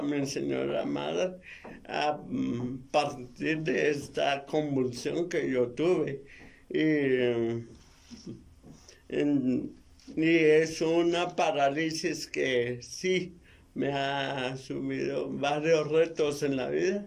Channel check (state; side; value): identical; both; correlation 1.00